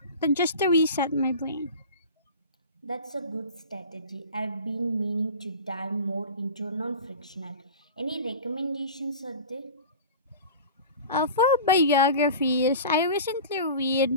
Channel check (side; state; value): both; inverted; correlation -0.35